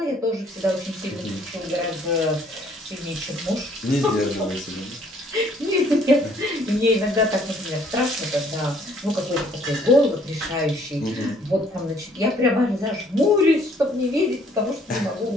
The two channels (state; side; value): normal; both; correlation 0.62